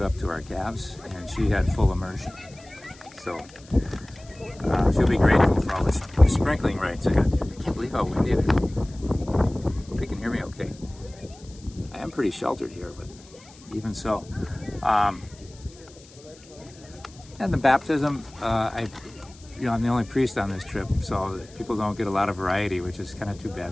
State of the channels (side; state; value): left; noise; hiss, 23 dB below the sound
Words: up to our calves, and she had full immersion. So she'll be grateful for all the sprinkling rights I got. I can't believe how windy it is. Hope you can hear me okay. I am pretty sheltered here, but even so. And the baptism, I'm the only priest on this trip, so people don't get a lot of variety, which is kind of too